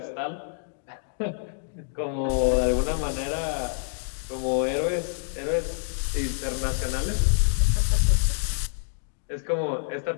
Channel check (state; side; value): silent; right; digital silence